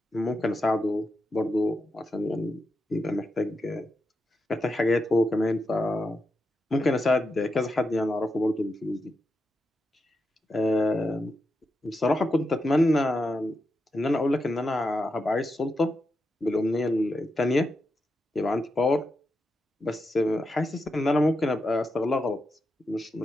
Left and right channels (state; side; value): normal; both; correlation 0.87